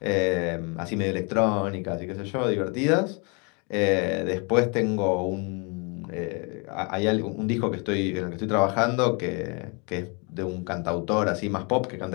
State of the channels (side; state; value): right; quieter; 33.1 dB